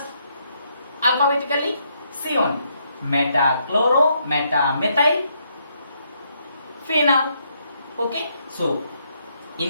Alphabetically, C only. Metachloro, metamethyl phenol. Okay. So,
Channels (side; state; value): both; inverted; correlation -0.75